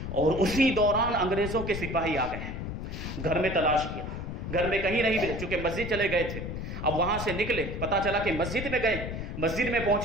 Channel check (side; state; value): left; noise; rumble, 6 dB below the sound